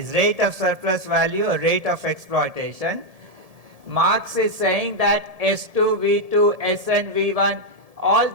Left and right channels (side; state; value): left; late; 1.7 ms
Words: rate of surplus value or rate of exploitation. Marx is saying that S2, V2, Sn, V1, all